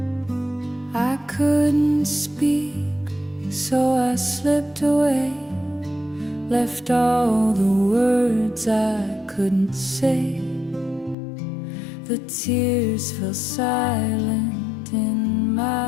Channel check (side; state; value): right; drops out; at 11.2 s